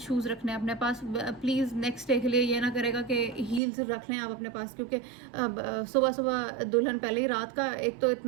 रखने हैं अपने पास। प्लीज़ नेक्स्ट डे के लिए ये ना करेगा कि हील्स रख लें आप अपने पास, क्योंकि सुबह सुबह दुल्हन पहले ही रात का एक तो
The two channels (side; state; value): left; drops out; at 3.6 s